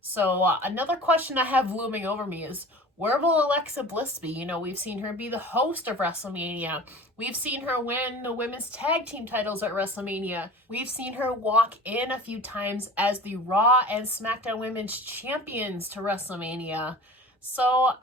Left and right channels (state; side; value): normal; both; correlation 0.39